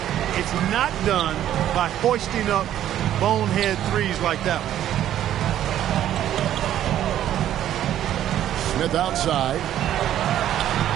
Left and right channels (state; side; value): quieter; left; 11.6 dB